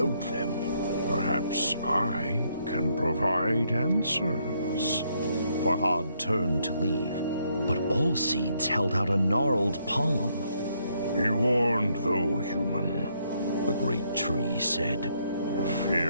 them, perhaps I can provide answers. Farhad turned to leave, but All Seeds held out a gnarled palm. Be warned, though, human, The great tree said. A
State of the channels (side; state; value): both; inverted; correlation -0.73